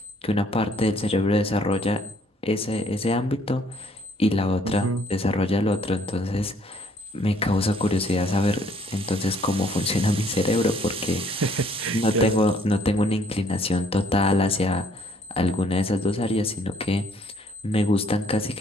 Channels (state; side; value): normal; both; correlation 0.63